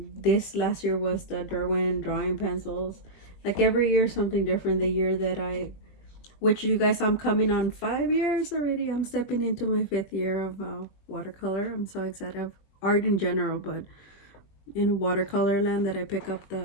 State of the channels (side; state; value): right; late; 21 ms